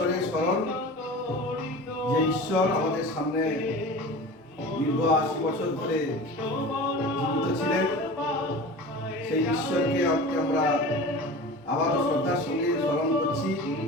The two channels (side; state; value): both; normal; correlation 0.35